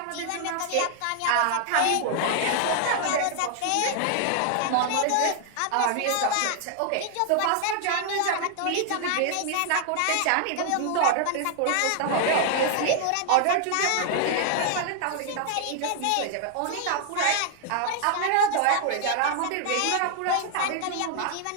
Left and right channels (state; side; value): different; both; correlation 0.00